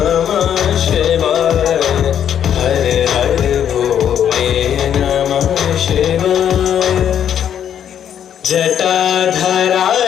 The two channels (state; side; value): quieter; right; 9.4 dB